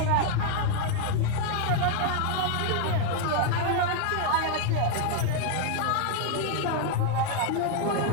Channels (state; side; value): different; both; correlation 0.00